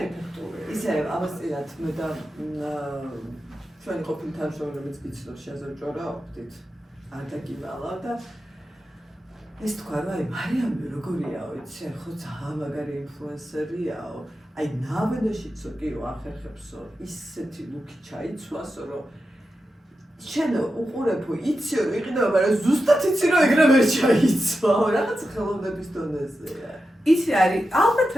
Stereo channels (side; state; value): both; normal; correlation 0.90